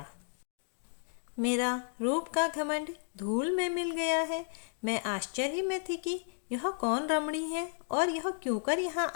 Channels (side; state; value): right; silent; digital silence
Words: मेरा रूप का घमंड धूल में मिल गया है। मैं आश्चर्य में थी कि यह कौन रमणी है और यह क्यों कर यहाँ